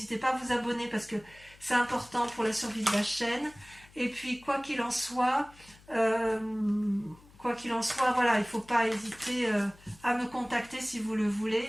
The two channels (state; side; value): noise; left; hum, 25 dB below the sound